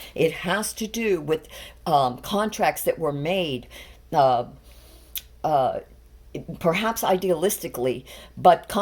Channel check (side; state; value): both; identical; correlation 1.00